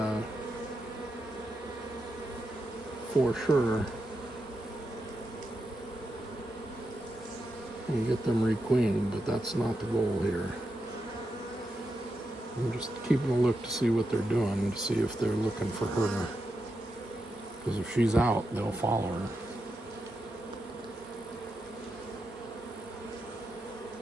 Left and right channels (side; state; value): both; normal; correlation 0.86